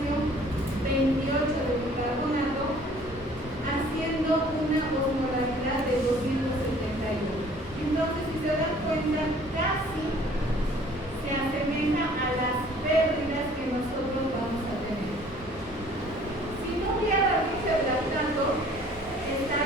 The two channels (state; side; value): normal; both; correlation 0.54